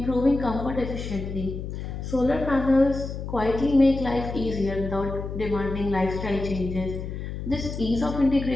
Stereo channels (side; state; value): left; noise; hum, 7 dB below the sound